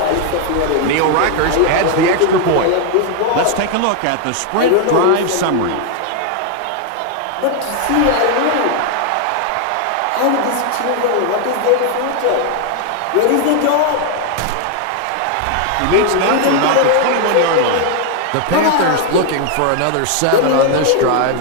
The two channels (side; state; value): both; different; correlation 0.00